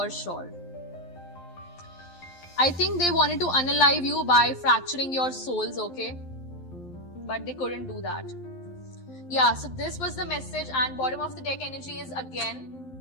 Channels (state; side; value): late; right; 11 ms